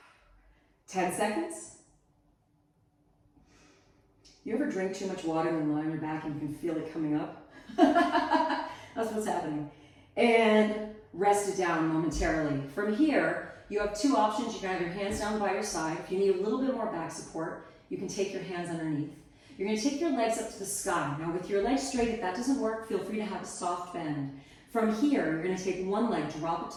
10 seconds. You ever drink too much water and lie on your back and you can feel it coming up? That's what's happening. And rest it down momentarily. From here, you have 2 options. You can have your hands down by your side. If you need a little bit more back support, you can take your hands underneath. You're going to take your legs up to the sky. Now with your legs straight, if that doesn't work, feel free to have a soft bend. From here, you're going to take one leg, drop it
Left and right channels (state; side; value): identical; both; correlation 1.00